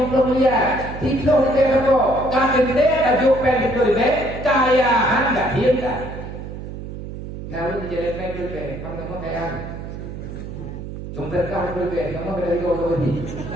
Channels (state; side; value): noise; right; hum, 9 dB below the sound